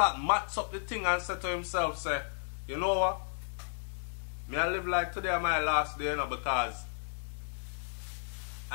match up the thing and say to himself, say, you know what? Me I live like today my last day, you know, because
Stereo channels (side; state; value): right; silent; digital silence